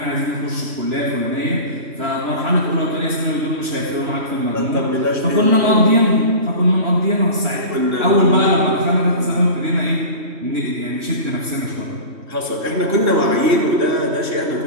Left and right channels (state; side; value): late; left; 3.1 ms